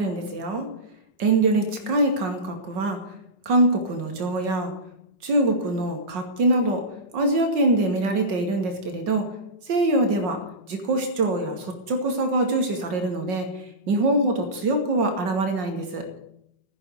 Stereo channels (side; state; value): left; late; 5.5 ms